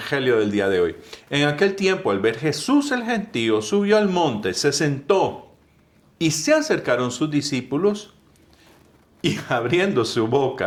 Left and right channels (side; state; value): both; identical; correlation 1.00